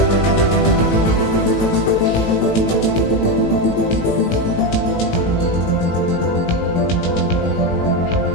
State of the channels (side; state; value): right; late; 18 ms